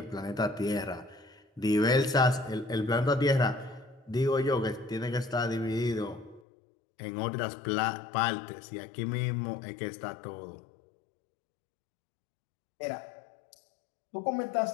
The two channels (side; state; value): right; drops out; at 6.4 s